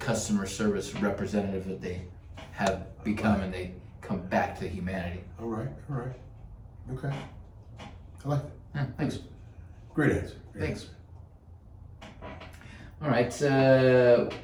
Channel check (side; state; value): both; identical; correlation 1.00